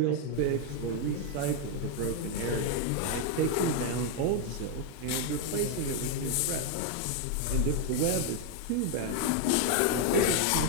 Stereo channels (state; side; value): different; both; correlation 0.01